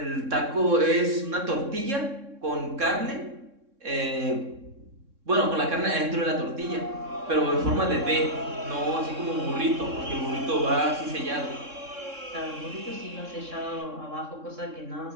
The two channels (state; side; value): late; left; 3.6 ms